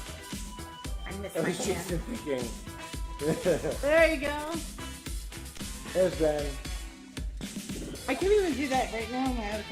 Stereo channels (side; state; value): both; identical; correlation 1.00